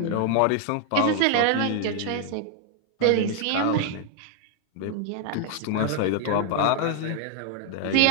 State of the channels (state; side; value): different; both; correlation 0.00